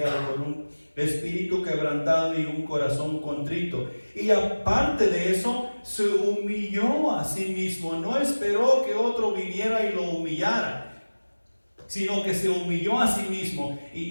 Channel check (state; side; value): inverted; both; correlation -1.00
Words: con un espíritu quebrantado y un corazón contrito. Y aparte de eso, se humilló a sí mismo. No esperó que otro viniera y lo humillara, sino que se humilló a sí mismo.